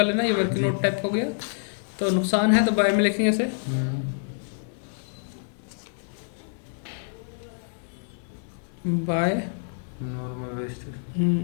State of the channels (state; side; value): silent; right; digital silence